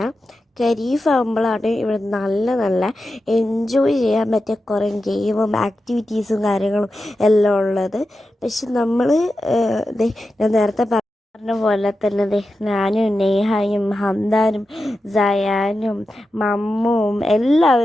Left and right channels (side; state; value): both; normal; correlation 0.91